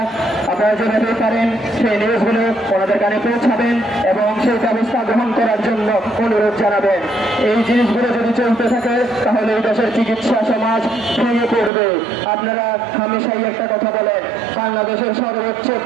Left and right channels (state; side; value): drops out; left; at 11.7 s